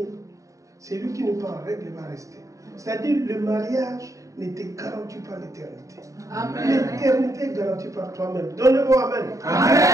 c'est lui qui n'est pas en règle va rester. C'est-à-dire le mariage ne te garantit pas l'éternité. L'éternité est garantie par toi-même. Donnez-moi Amen.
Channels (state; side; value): late; left; 0.16 ms